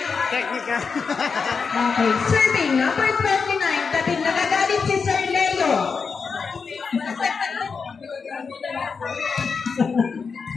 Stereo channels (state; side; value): quieter; right; 5.3 dB